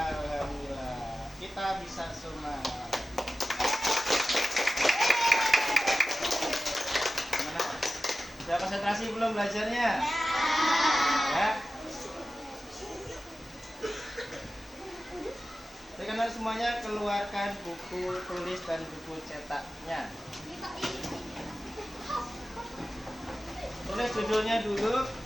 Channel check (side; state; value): both; normal; correlation 0.94